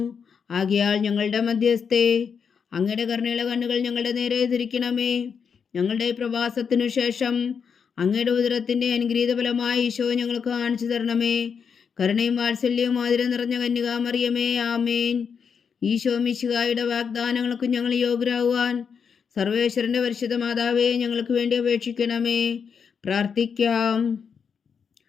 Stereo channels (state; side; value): quieter; right; 6.5 dB